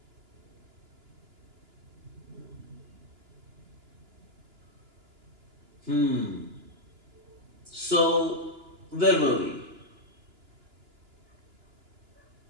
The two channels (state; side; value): late; left; 2.9 ms